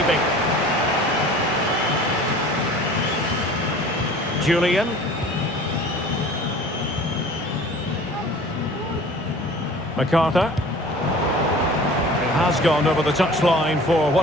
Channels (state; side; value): normal; both; correlation 0.45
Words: Julian. MacArthur. It has gone over the touchline for